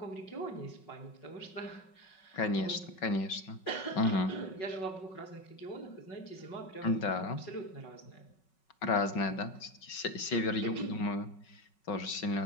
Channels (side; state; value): right; late; 5.4 ms